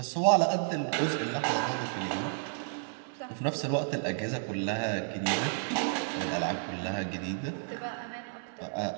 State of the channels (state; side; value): silent; left; digital silence